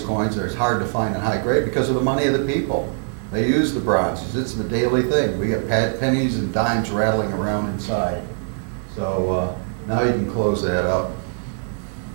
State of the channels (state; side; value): silent; left; 64 dB below the other